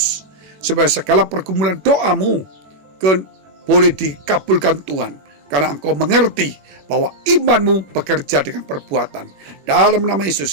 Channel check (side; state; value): left; late; 21 ms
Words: supaya segala pergumulan doamu boleh dikabulkan Tuhan. Karena engkau mengerti bahwa imanmu bekerja dengan perbuatan. Dalam nama